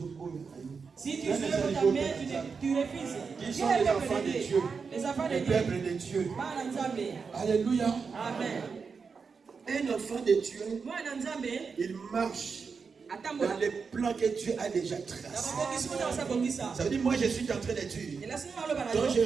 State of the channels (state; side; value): quieter; left; 5.3 dB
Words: autre côté. Si tu soulèves ta main, tu refuses. Qui sont les enfants de Dieu? Les enfants de Le Dieu. peuple de Dieu. Alléluia. Amen. Un enfant de Dieu, il marche dans les plans que Dieu a déjà tracés. Ça veut dire, moi je suis en train de dire, quand je